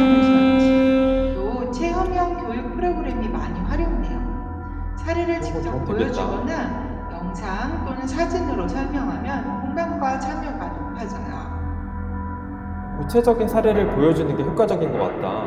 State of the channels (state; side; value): identical; both; correlation 1.00